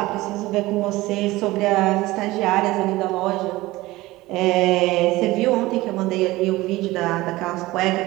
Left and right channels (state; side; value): quieter; left; 18.9 dB